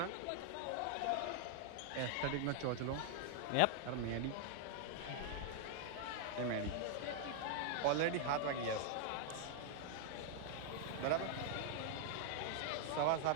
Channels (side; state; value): both; different; correlation 0.00